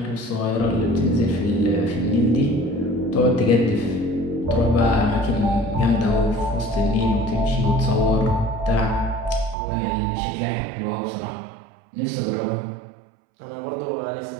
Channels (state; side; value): drops out; left; at 9.6 s